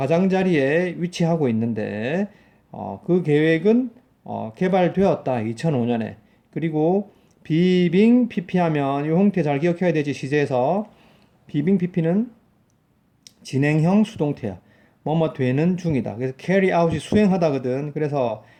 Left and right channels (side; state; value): both; identical; correlation 1.00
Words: 위치하고 있는데 그 계획은 개발되었다. 2005년에. 그리고 비빙 PP 하면 이 형태 잘 기억해야 되지. 시제에서 비빙 PP는 진행형 수동태야. 뭐뭐 되는 중이다. 그래서 carry out이 수행하다거든. 그래서